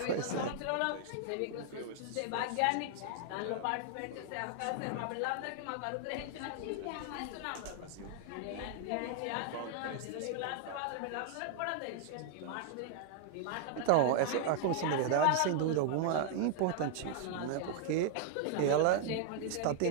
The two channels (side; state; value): both; different; correlation 0.00